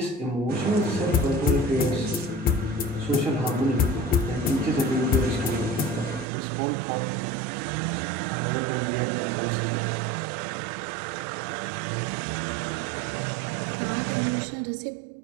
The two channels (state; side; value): drops out; left; at 6.2 s